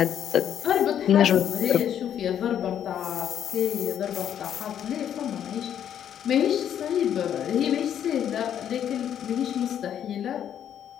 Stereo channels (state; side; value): quieter; right; 9.6 dB